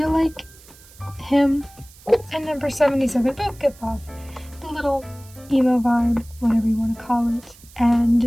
like him and number 77 both give off the little emo vibe, whatever you want to call it.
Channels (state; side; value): noise; right; hiss, 23 dB below the sound